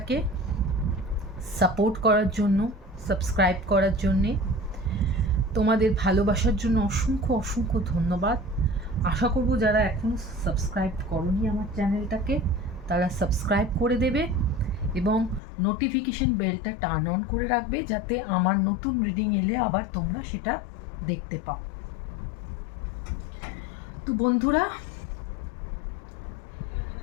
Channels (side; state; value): right; drops out; at 15.4 s